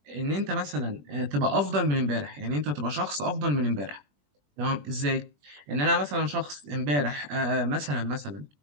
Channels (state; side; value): late; left; 21 ms